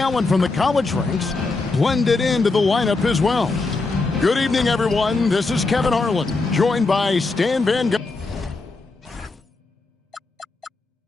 from the college ranks blended into the lineup as well. Good evening, everyone. This is Kevin Harlan, joined by Stan Van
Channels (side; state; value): right; quieter; 3.6 dB